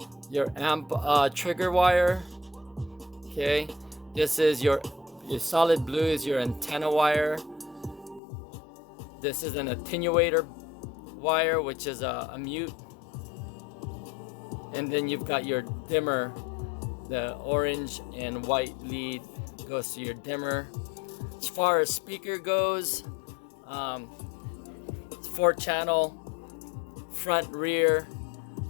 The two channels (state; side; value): drops out; right; at 8.2 s